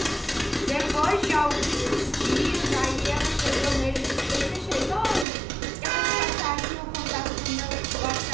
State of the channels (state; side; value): drops out; left; at 5.2 s